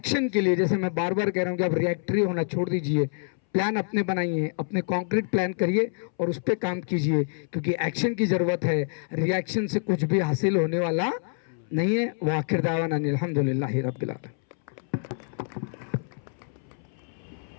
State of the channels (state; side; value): silent; right; 60 dB below the other